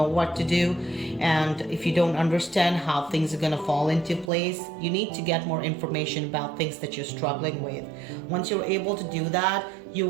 what to do, and if you don't understand how things are going to fall into place, you need to get more information about things that you're struggling with. Once you're able to do that, you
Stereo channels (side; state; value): left; drops out; at 4.3 s